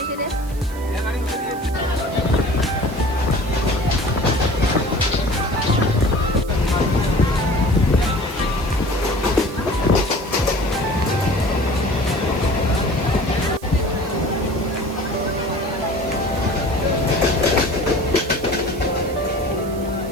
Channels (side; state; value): right; noise; hiss, 20 dB below the sound